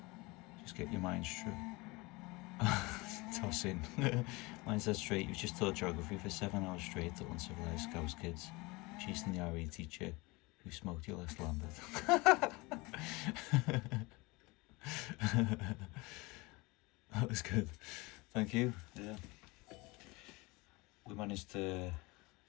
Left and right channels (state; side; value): quieter; right; 24.4 dB